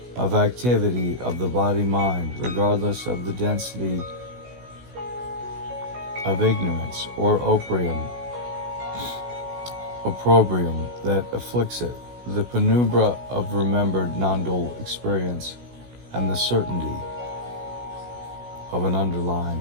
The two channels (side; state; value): left; late; 16 ms